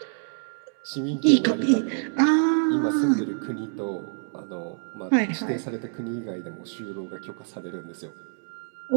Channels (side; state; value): left; silent; digital silence